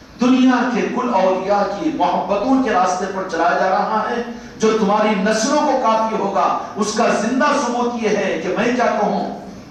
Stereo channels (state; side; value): identical; both; correlation 1.00